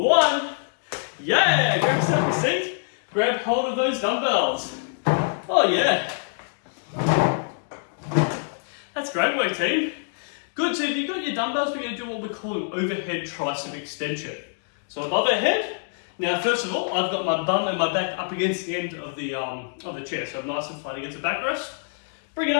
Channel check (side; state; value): right; silent; digital silence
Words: Yeah, grab yourself a seat. Grab hold of those dumbbells. Oh yeah. That's great work, team. Good, so if you've got your dumbbells, we're going to do what we call an overhead tricep extension. So above our head. Now, first of all, I've got my bum and my back up against the end of the chair, so I'm nice and flat against the backrest. Bring it